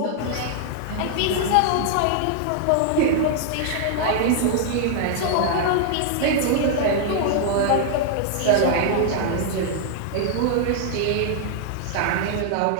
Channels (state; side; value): different; both; correlation -0.01